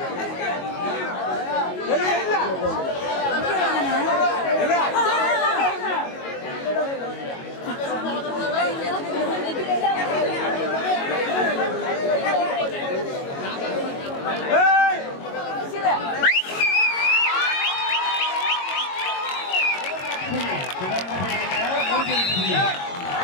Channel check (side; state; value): right; late; 22 ms